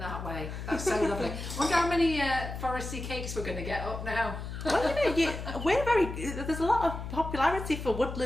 that way. That's so lovely. Wonder how many foresty cakes we're going to get up now. Well, you know, there's a lot of popularity for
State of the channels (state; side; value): noise; left; hum, 7 dB below the sound